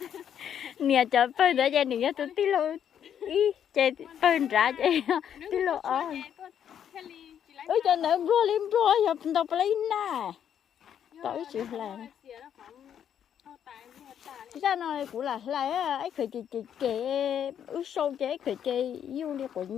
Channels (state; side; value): quieter; right; 9.1 dB